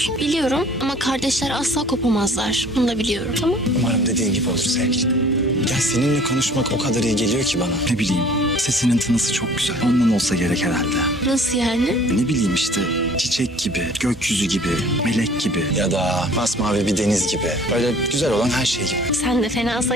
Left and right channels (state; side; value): normal; both; correlation 0.51